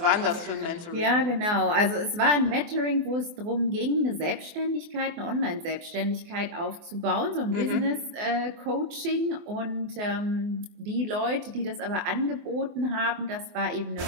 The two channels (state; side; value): late; left; 24 ms